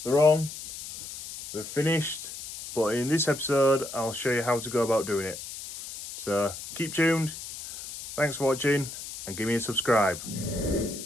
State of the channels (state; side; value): noise; left; hiss, 11 dB below the sound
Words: they're on, they're finished, but in this episode I'll show you how to go about doing it. So keep tuned, thanks for watching and give me a subscribe.